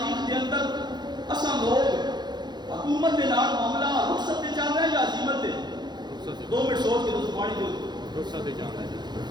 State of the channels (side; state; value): left; late; 0.21 ms